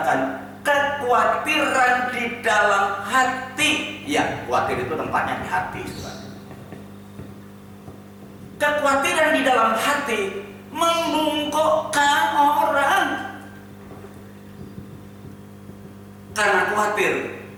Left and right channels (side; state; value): both; identical; correlation 1.00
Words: kekhawatiran di dalam hati. Ya, khawatir itu tempatnya di hati. Kekhawatiran di dalam hati membungkukkan orang. Karena khawatir,